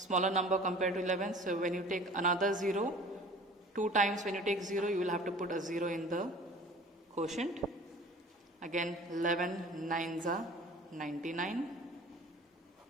number compared to 11, so when you take another 0, 2 times when you take 0, you will have to put a 0 in the quotient. Again 11 9s are 99.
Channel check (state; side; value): normal; both; correlation 0.45